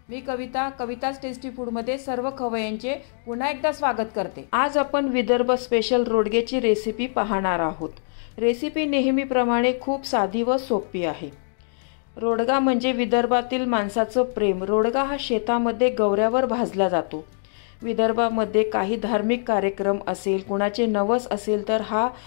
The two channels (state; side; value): silent; right; digital silence